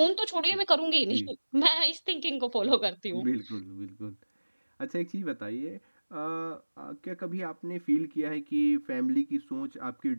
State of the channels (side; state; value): both; inverted; correlation -1.00